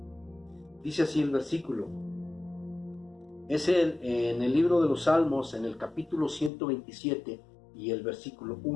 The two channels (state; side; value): drops out; right; at 6.5 s